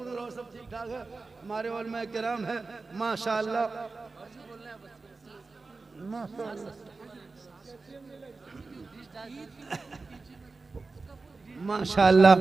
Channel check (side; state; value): left; quieter; 3.9 dB